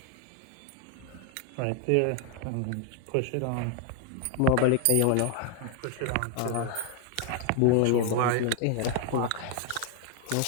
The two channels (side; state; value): both; different; correlation 0.01